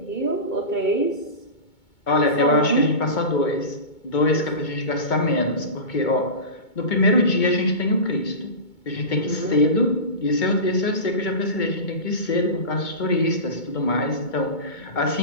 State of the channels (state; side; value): late; right; 2.2 ms